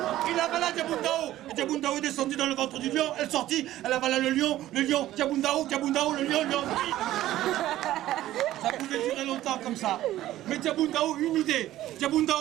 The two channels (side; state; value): left; quieter; 14.3 dB